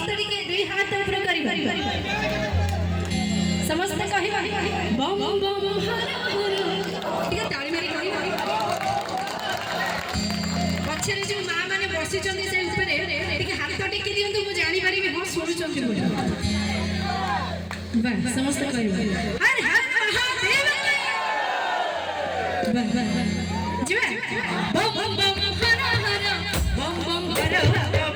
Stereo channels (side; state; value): both; identical; correlation 1.00